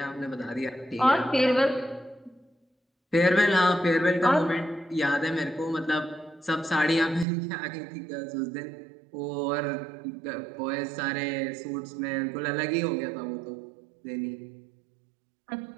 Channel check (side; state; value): left; drops out; at 7.2 s